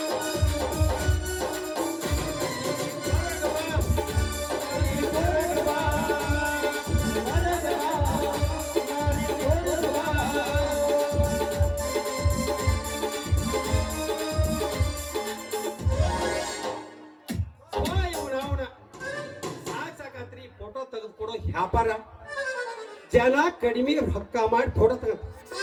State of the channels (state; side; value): identical; both; correlation 1.00